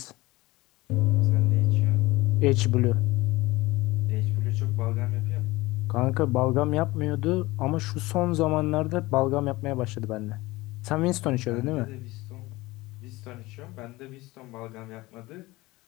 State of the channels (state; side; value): quieter; right; 20.3 dB